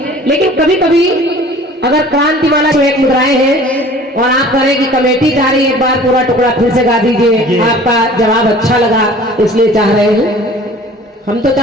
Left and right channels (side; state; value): both; normal; correlation 0.47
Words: लेकिन कभी कभी अगर क्रांतिमाला की एक मुद्राएं हैं और आप करें कि कमेटी चाह रही है एक बार पूरा टुकड़ा फिर से गा दीजिए, आपका जवाब अच्छा लगा इसलिए चाह रहे हैं। हम तो